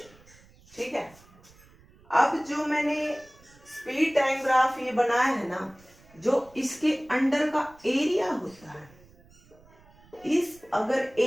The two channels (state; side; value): noise; right; rumble, 27 dB below the sound